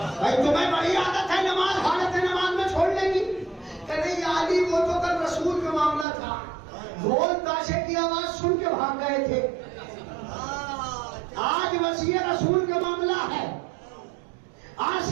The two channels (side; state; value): left; drops out; at 6.1 s